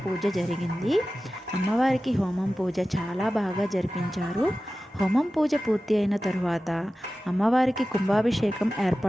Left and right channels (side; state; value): both; normal; correlation 0.95